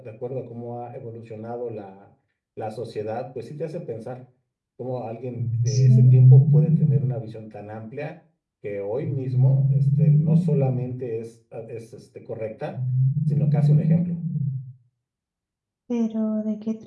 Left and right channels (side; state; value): both; identical; correlation 1.00